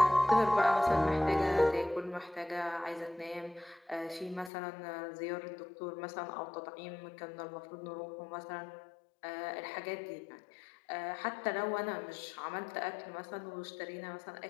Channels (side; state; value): right; drops out; at 4.5 s